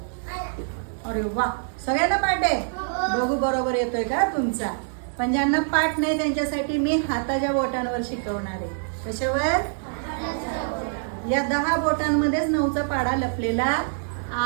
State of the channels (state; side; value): silent; left; digital silence